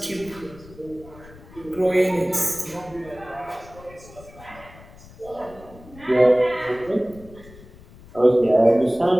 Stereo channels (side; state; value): left; noise; rumble, 21 dB below the sound